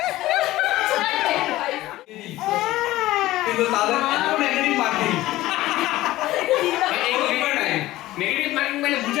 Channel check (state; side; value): quieter; right; 16.6 dB